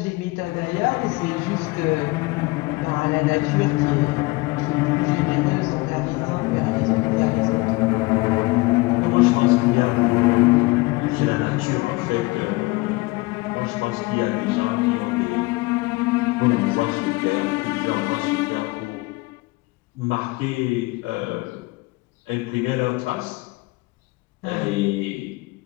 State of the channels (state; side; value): quieter; right; 23.3 dB